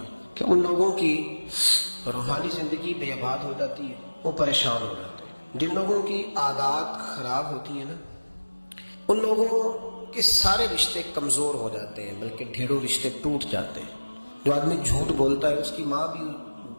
ہے کہ ان لوگوں کی روحانی زندگی بے آباد ہو جاتی ہے، وہ پریشان ہو جاتے ہیں۔ جن لوگوں کی عادات خراب ہوتی ہیں نا، ان لوگوں کے سارے رشتے کمزور ہو جاتے ہیں، بلکہ ڈھیروں رشتے ٹوٹ جاتے ہیں۔ جو آدمی جھوٹ بولتا ہے اس کی ماں بھی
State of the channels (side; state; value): both; inverted; correlation -1.00